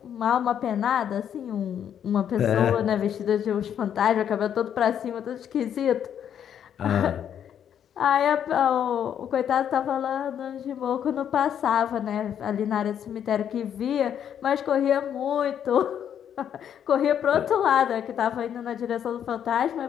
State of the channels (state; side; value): quieter; right; 9.1 dB